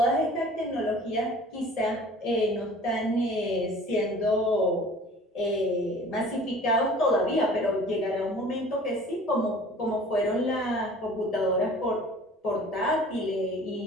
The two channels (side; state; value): both; normal; correlation 0.47